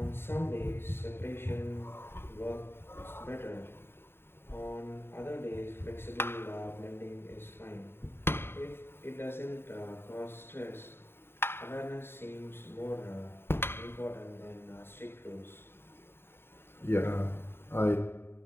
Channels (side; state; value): right; late; 0.11 ms